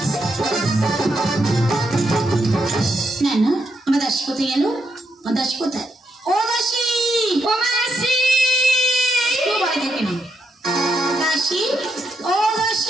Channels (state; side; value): normal; both; correlation 0.80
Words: না না, আমার দাসী কোথায় গেল? আমার দাসী কোথায়? ও দাসী, ও মাসি, কেউ বাড়ি থেকে না। দাসী, ও